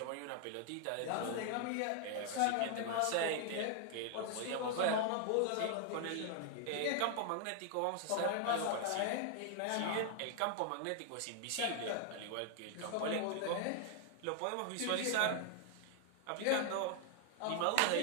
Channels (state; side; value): different; both; correlation 0.00